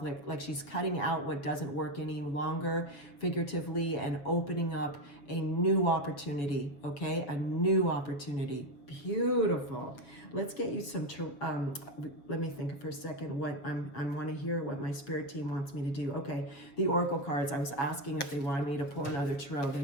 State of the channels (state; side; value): late; right; 7.2 ms